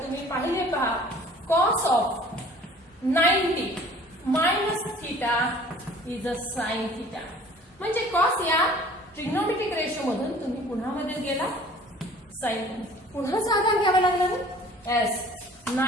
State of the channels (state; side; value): normal; both; correlation 0.49